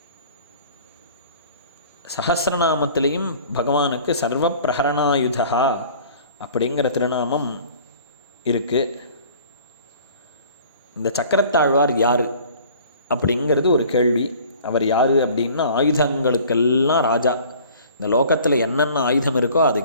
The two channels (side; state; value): both; inverted; correlation -0.49